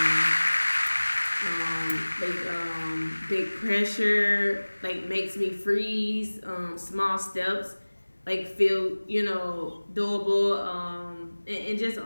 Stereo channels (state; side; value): inverted; both; correlation -1.00